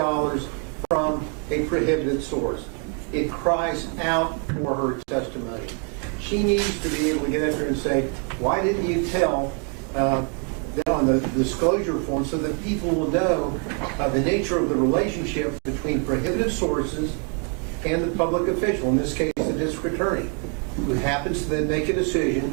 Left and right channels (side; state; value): left; quieter; 39.2 dB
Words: from a prohibited source. It cries out for her testimony. She needs to be able to get up there and say, why didn't you tell on the disclosure form, so that people will know the nature of the relationship between prohibited sources and the public official, in this case the district attorney, who happens to then make a